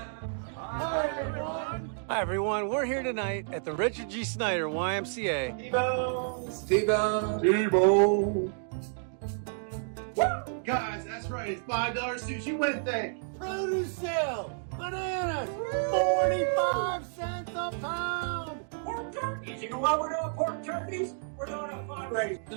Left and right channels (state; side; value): silent; left; digital silence